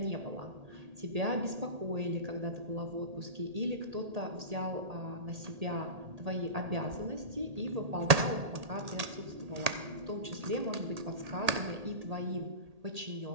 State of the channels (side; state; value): left; late; 1.8 ms